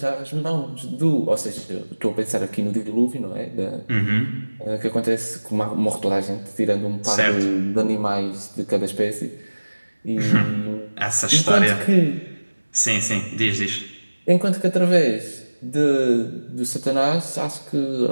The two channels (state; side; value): inverted; both; correlation -1.00